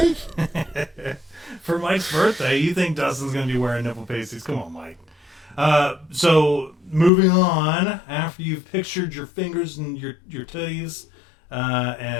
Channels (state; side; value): drops out; right; at 7.1 s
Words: For Mike's birthday, you think Dustin's going to be wearing nipple pasties? Come on, Mike. So moving on, after you've pictured your fingers and your titties,